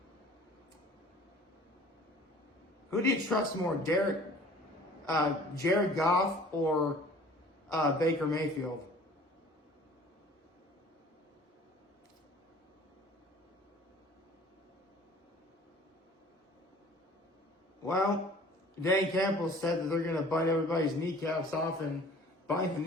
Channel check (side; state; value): both; normal; correlation 0.48